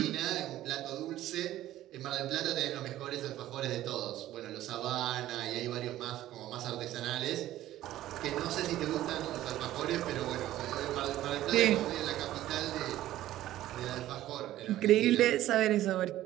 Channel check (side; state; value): left; quieter; 14.1 dB